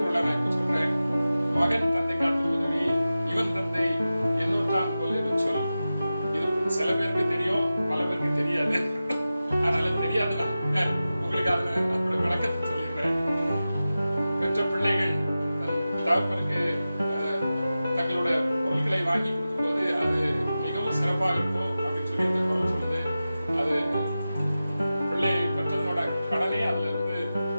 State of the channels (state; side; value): inverted; both; correlation -0.94